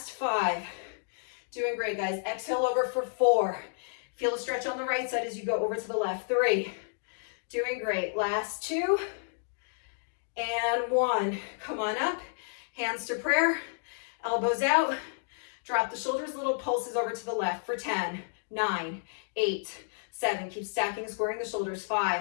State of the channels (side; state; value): right; silent; digital silence